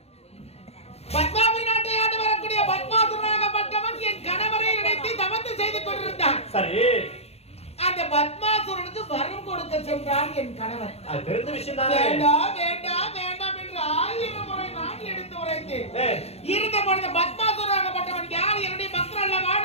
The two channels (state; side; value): late; right; 0.30 ms